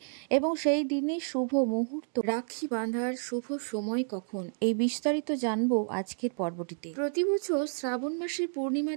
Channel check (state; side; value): silent; left; digital silence